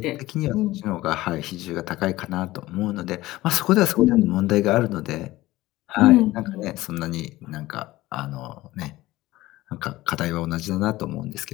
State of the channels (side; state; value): right; quieter; 17.6 dB